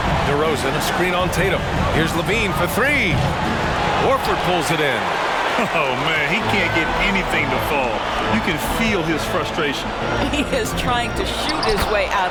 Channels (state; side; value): identical; both; correlation 1.00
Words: DeRozan, a screen on Tatum. Here's LaVine for 3. Horford pulls it in. Oh, man, he can't get anything to fall. You can feel his frustration. He is trying to shoot his way